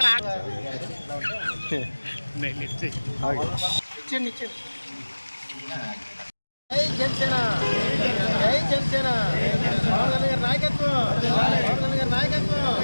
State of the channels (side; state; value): both; inverted; correlation -1.00